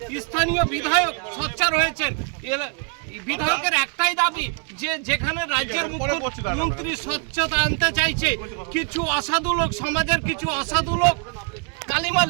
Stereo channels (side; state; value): left; quieter; 34.9 dB